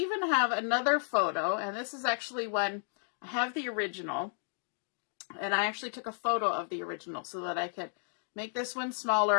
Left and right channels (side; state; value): right; silent; digital silence